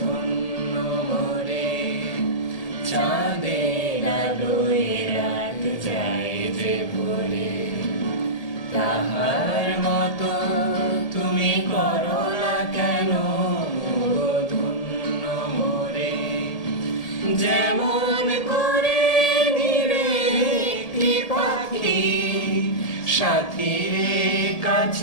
মোরে। চাঁদের আলোয় রাত যায় যে ভুলে, তাহার মতো তুমি করো না কেন গো ধন্য মোরে। যেমন করে পাখি সাথীর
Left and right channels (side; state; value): right; late; 1.8 ms